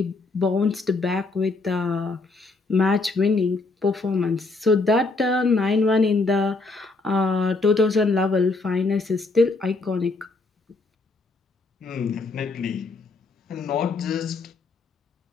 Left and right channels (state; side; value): quieter; right; 3.6 dB